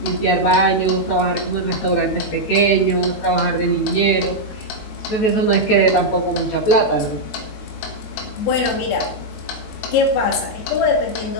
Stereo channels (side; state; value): right; late; 18 ms